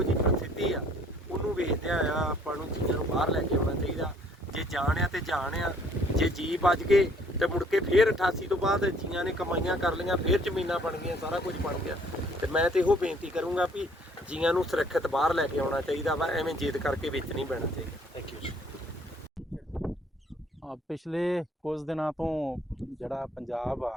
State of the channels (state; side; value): normal; both; correlation 0.60